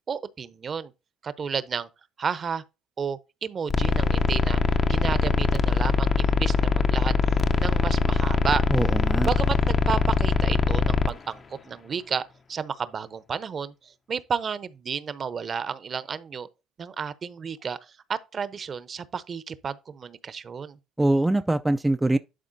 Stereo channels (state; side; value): normal; both; correlation 0.80